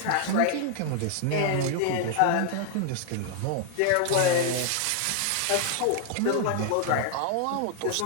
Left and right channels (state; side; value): different; both; correlation 0.00